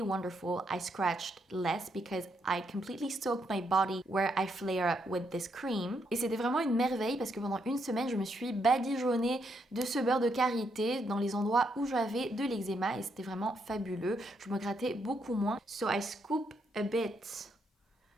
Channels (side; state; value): both; normal; correlation 0.77